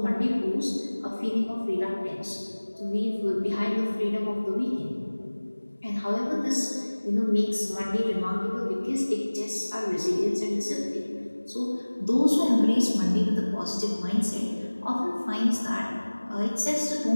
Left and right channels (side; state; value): both; inverted; correlation -1.00